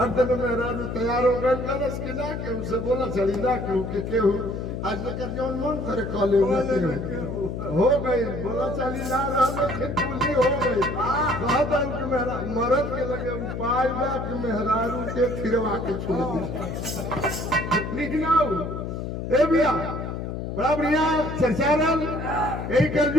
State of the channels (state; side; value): noise; left; hum, 5 dB below the sound